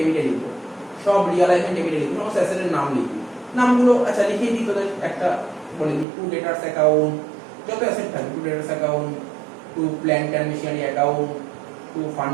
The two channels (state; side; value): drops out; left; at 6.1 s